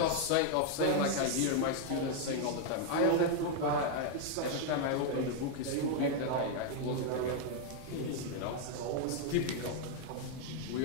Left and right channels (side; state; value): both; different; correlation 0.00